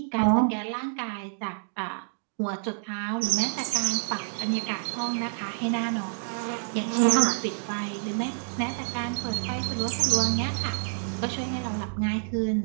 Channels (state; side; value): silent; left; digital silence